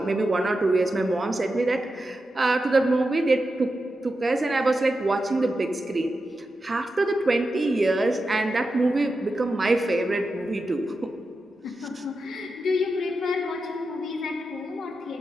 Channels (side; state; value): both; normal; correlation 0.90